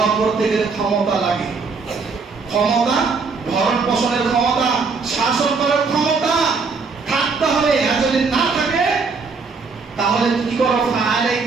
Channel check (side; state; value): left; quieter; 4.7 dB